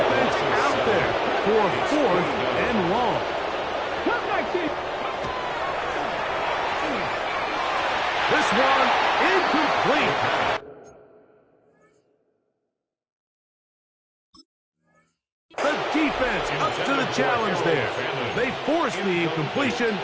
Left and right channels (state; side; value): identical; both; correlation 1.00